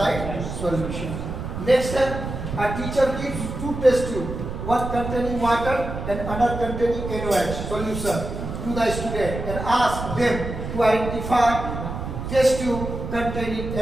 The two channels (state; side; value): noise; right; rumble, 6 dB below the sound